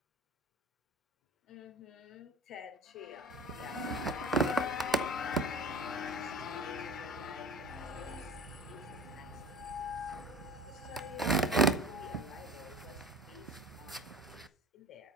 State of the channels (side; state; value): both; normal; correlation 0.39